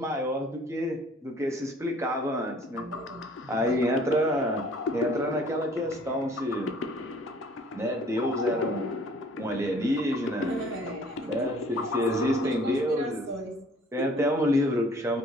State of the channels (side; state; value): both; normal; correlation 0.54